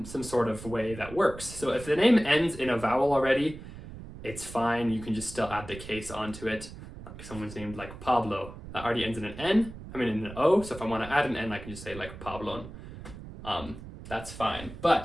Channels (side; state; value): right; noise; rumble, 13 dB below the sound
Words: some sort of way that works. So if the name ends in a vowel already, it's fine. You can just still add the case onto it. Like someone's named like Pablo. That already ends in an N. In an O. So if I want to add an N, I can just say like Pablon. That's fine.